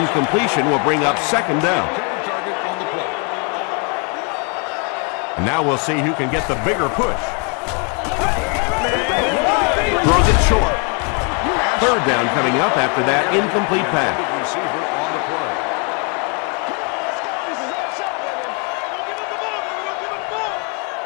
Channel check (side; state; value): right; quieter; 35.9 dB